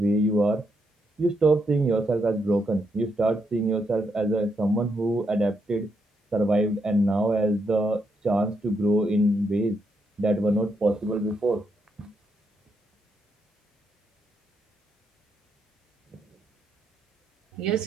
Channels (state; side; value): normal; both; correlation 0.79